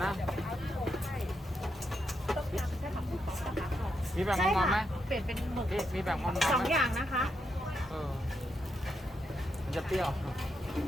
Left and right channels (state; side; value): normal; both; correlation 0.82